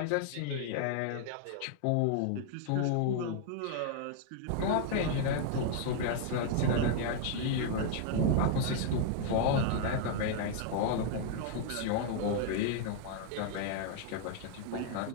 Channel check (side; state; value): both; different; correlation 0.00